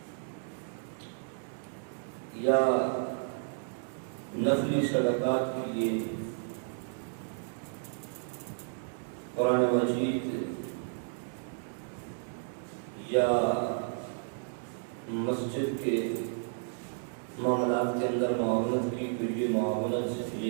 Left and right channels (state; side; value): silent; left; digital silence